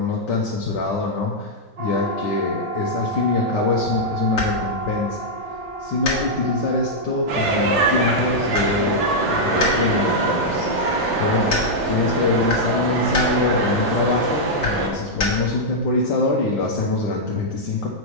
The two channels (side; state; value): both; normal; correlation -0.06